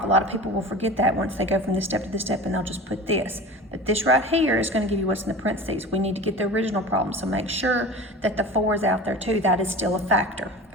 A lot of people will forget that once they go from this step to this step and they'll just put this. But this right here is going to give you what's in the parentheses. We need to get the original problem, so make sure that the 4 is out there too. That is still a factor,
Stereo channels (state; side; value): normal; both; correlation 0.35